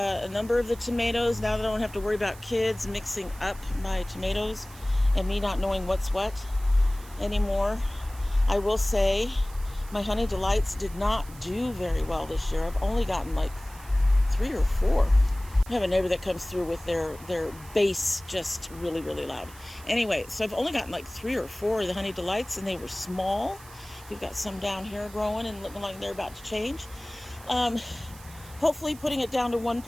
number of the tomatoes now that I don't have to worry about kids mixing up my tomatoes and me not knowing what's what anymore. I will say my Honey Delights did not do very well this year. I've only gotten like 3 or 4. I have a neighbor that comes through with their bass just really, really loud. Anyway, so I've only gotten like 3 or 4 of the Honey Delights, and they were small. We've got some down here growing and looking like they're about to change. Hopefully putting it down to 1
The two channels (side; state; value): right; noise; hiss, 20 dB below the sound